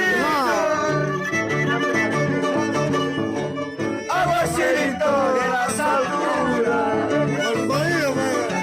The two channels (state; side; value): identical; both; correlation 1.00